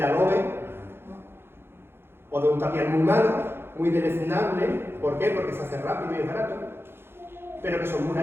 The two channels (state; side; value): late; left; 0.11 ms